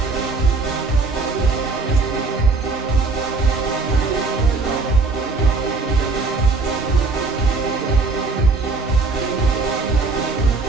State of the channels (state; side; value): quieter; left; 3.8 dB